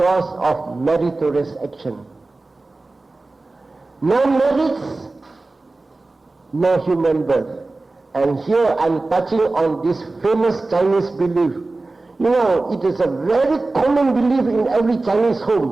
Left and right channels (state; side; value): quieter; left; 3.3 dB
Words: of meritorious action. No merits, no human birth. And here I'm touching on this famous Chinese belief. You know, it is a very common belief in every Chinese